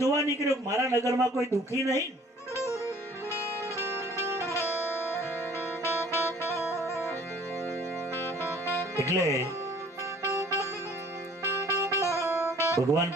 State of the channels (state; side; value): normal; both; correlation 0.54